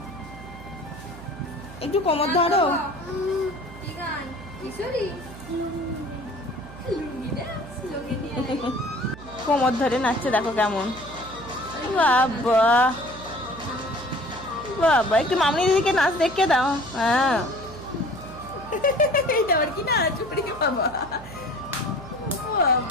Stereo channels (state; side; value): noise; right; hum, 16 dB below the sound